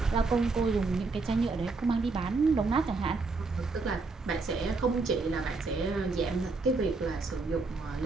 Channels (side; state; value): left; quieter; 3.9 dB